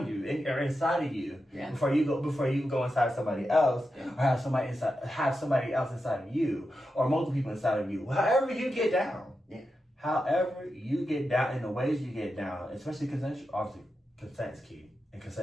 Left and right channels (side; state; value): both; normal; correlation 0.89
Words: you or inside of you before you go inside somebody else, or have somebody else inside of you, or multiple people inside of you. However you get down. Yeah. However you get down, in the ways you get down, especially consent. Obviously, consent is key, and